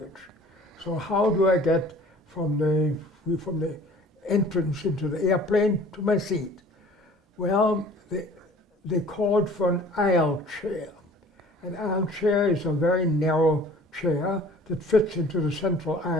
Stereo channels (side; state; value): both; normal; correlation 0.49